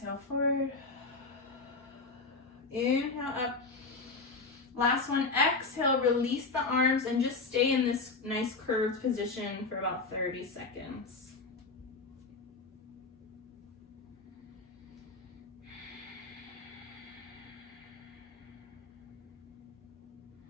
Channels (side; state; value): right; quieter; 3.9 dB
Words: forward. Inhale up. Last one, exhale, release the arms and just stay in this nice curved position for about 30 seconds.